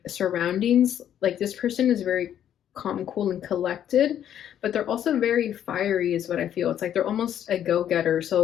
surroundings. Like this person is very calm, cool, and collected, but they're also very fiery is what I feel. It's like they're almost a go-getter.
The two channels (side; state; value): right; quieter; 10.2 dB